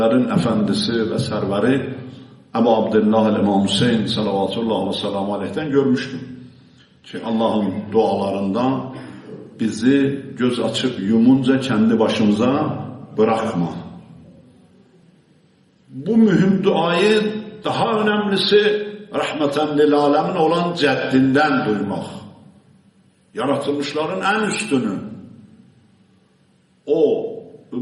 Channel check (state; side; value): identical; both; correlation 1.00